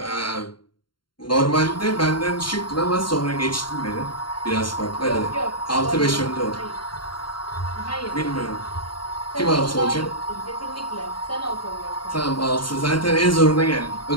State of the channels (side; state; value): right; late; 0.72 ms